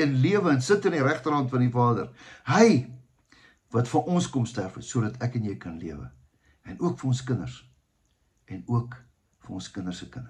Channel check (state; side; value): identical; both; correlation 1.00